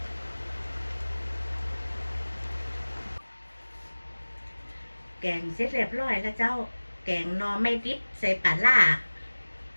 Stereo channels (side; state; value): both; inverted; correlation -1.00